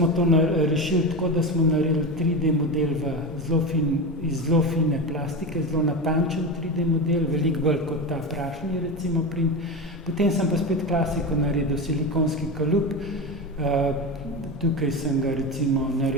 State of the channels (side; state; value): both; normal; correlation 0.21